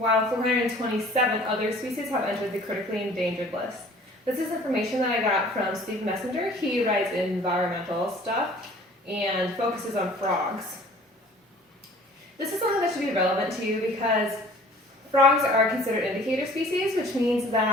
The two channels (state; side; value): normal; both; correlation 0.50